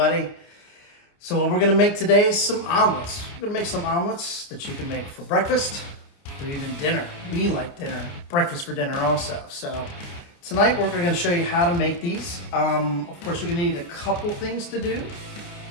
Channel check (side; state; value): right; late; 29 ms